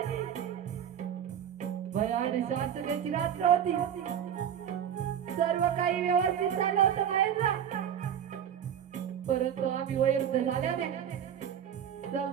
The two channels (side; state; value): left; quieter; 9.1 dB